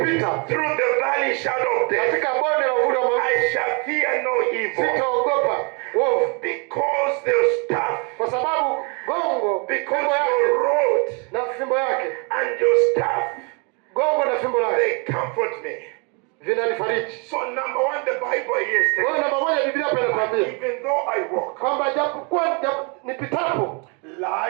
kupita through the valley shadow of death, katika bonde la uvuli wa mauti, I shall fear no evil. sitaogopa uovu, Because the staff, kwa sababu gongo, because fimbo yake your rod na fimbo yake, and your staff, gongo na fimbo yake they comfort me. vinanifariji. So number one, the Bible here is Kwa hiyo telling namba moja Biblia hapa inatuambia even though I walk, kwamba japokuwa nipitapo,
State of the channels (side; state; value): left; quieter; 33.8 dB